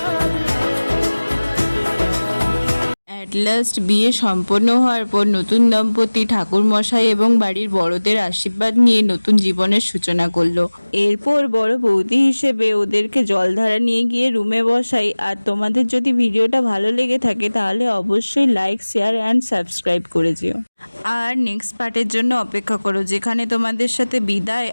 লাস্ট বিয়ে সম্পন্ন হওয়ার পর নতুন দম্পতি ঠাকুরমশাই এবং বাড়ির বড়দের আশীর্বাদ নিয়ে নতুন জীবনের সূচনা করলো। এরপর বড় বৌদি হিসেবে ওদেরকে জলধারা নিয়ে গিয়ে রুমে বসাই। আর তোমাদের যদি ভিডিওটা ভালো লেগে থাকে তাহলে অবশ্যই লাইক, শেয়ার অ্যান্ড সাবস্ক্রাইব করে যেও। আর নেক্সট পার্টের জন্য অপেক্ষা করো, যেখানে তোমাদের সাথে বিদায়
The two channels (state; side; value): inverted; both; correlation -1.00